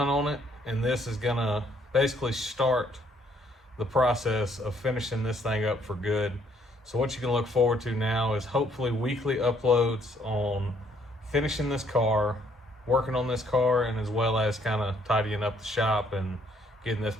on it, and this is going to basically start the process of finishing this thing up for good. So what you can look forward to now is hopefully weekly uploads on finishing this car, working on this car, and as well as kind of tidying up the shop and getting this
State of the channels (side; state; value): both; normal; correlation 0.67